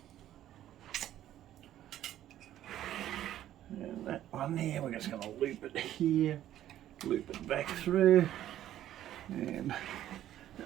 And that one there, we're just going to loop it here, loop it back through, and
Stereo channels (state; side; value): quieter; left; 12.4 dB